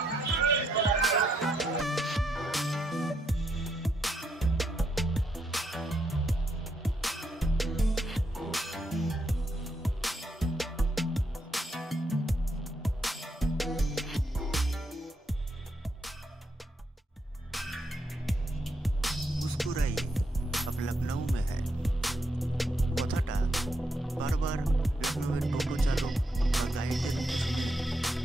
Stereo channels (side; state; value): both; normal; correlation 0.78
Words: मुस्कुराइए अब लखनऊ में है কথাটা বারবার লখনউয়ের টোটো চালক বা গাইডের মুখে শুনে